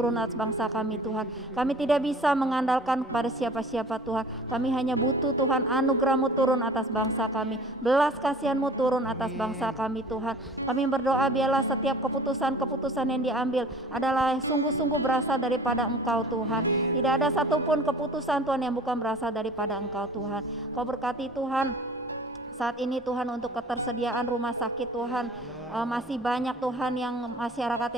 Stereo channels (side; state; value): both; normal; correlation 0.45